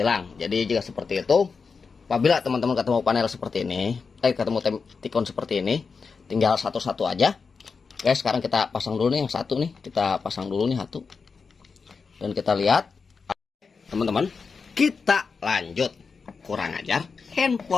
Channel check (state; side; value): quieter; right; 5.1 dB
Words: Jadi jika seperti itu, apabila teman-teman ketemu panel seperti ini, ketemu tikun seperti ini, tinggal satu-satu aja. Oke, sekarang kita pasang dulu nih yang satu nih, kita pasang dulu nih satu, dan kita lihat, teman-teman, kita lanjut. Kurang ajar,